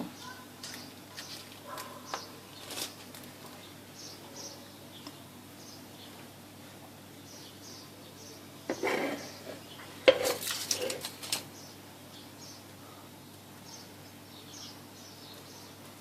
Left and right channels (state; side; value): identical; both; correlation 1.00